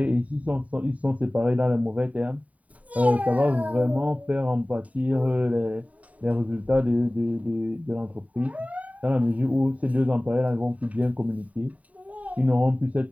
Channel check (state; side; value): late; left; 0.069 ms